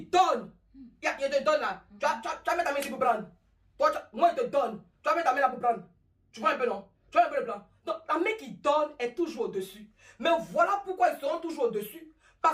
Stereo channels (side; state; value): both; identical; correlation 1.00